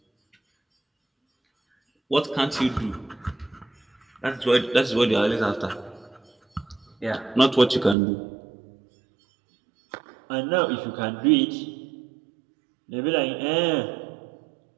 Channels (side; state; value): left; drops out; at 8.0 s